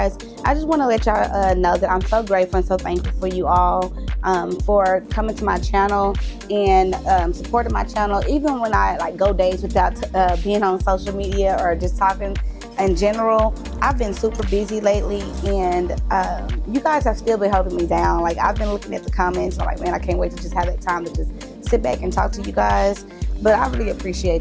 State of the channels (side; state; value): both; identical; correlation 1.00